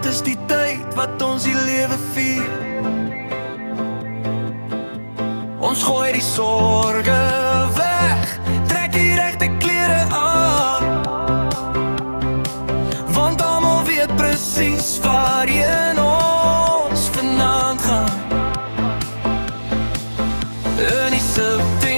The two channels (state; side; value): inverted; both; correlation -1.00